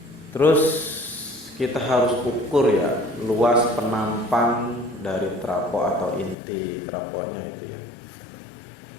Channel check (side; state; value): right; drops out; at 6.4 s